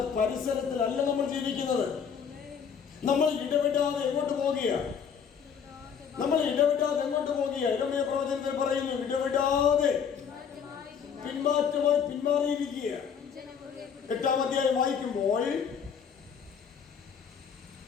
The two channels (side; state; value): right; quieter; 7.2 dB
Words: പരിസരത്തിലല്ല നമ്മൾ ജീവിക്കുന്നത്. നമ്മൾ ഇടപെടാതെ എങ്ങോട്ട് പോകുകയാണ്? യിരെമ്യാ പ്രവചനത്തിൽ പറയുന്നു, ഇടപെടാതെ പിന്മാറ്റമായി പിന്മാറിയിരിക്കുക. 8-ാം അധ്യായം വായിക്കുമ്പോൾ